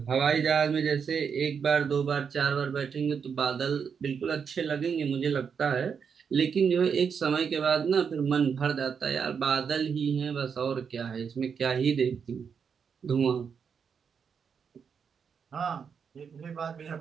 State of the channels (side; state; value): left; quieter; 6.6 dB